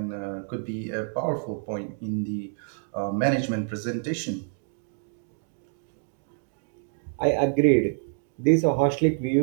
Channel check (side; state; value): left; silent; digital silence